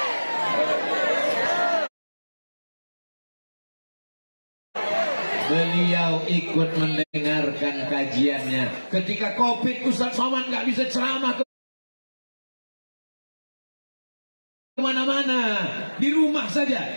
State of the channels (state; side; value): inverted; both; correlation -1.00